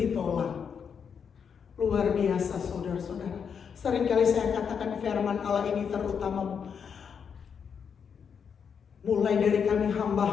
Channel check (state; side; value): quieter; right; 6.9 dB